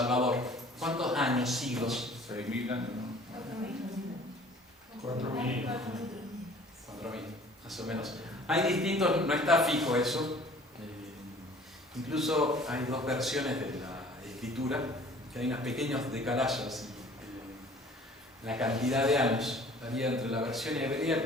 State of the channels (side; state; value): both; normal; correlation 0.50